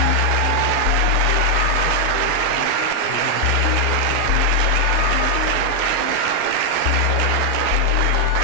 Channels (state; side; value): different; both; correlation 0.00